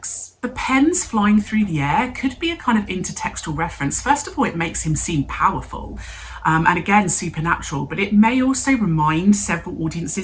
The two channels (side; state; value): both; identical; correlation 1.00